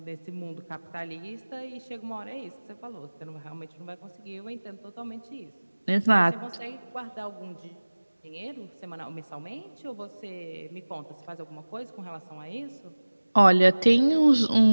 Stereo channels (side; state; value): both; inverted; correlation -1.00